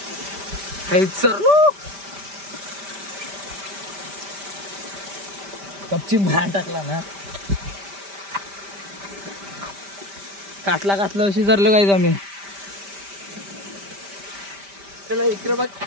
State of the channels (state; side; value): late; left; 5.1 ms